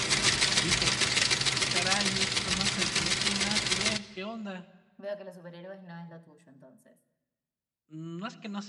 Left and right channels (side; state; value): both; identical; correlation 1.00